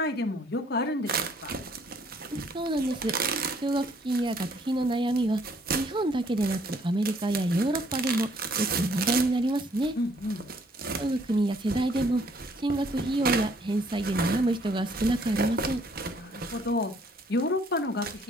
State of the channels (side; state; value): both; normal; correlation 0.64